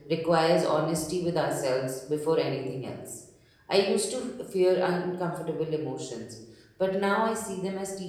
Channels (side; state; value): both; identical; correlation 1.00